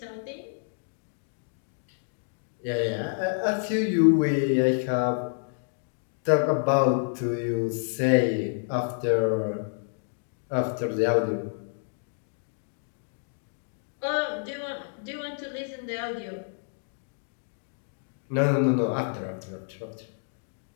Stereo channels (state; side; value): silent; right; digital silence